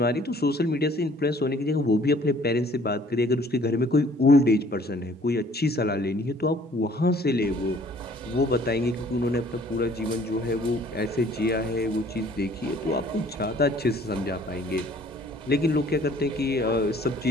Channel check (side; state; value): both; normal; correlation 0.56